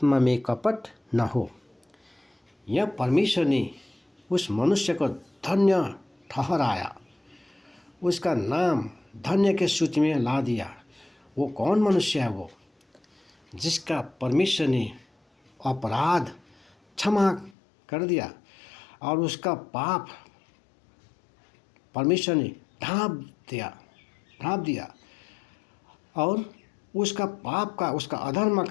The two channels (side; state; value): right; drops out; at 17.6 s